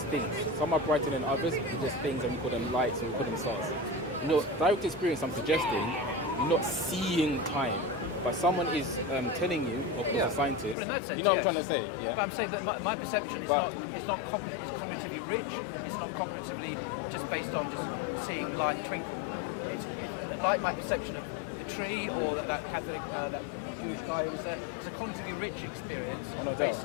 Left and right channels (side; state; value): right; drops out; at 10.8 s